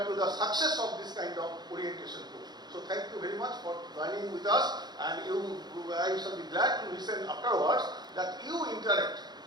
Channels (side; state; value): left; late; 0.20 ms